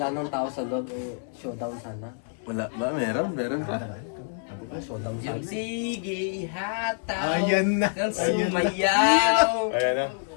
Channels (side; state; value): right; silent; 60 dB below the other